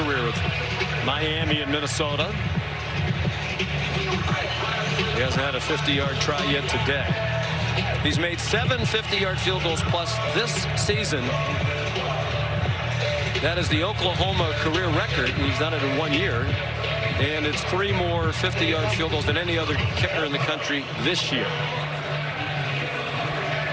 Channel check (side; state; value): both; identical; correlation 1.00